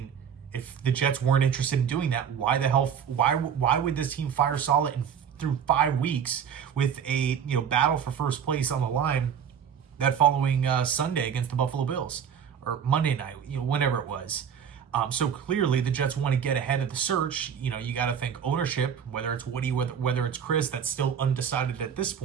if the Jets weren't interested in doing that, why would this team fire Saleh through 5 weeks with a battle for first place on the line that following Sunday against the Buffalo Bills, or Monday night, whenever it was. So clearly the Jets want to get ahead of the search. You got to think ownership, whether it's Woody, whether it's Chris, that's still undecided at this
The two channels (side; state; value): left; quieter; 7.9 dB